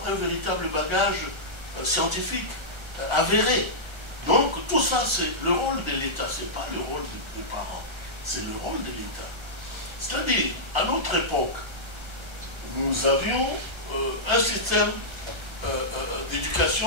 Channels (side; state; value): left; late; 1.4 ms